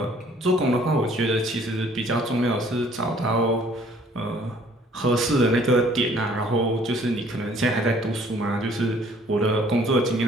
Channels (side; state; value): both; normal; correlation 0.58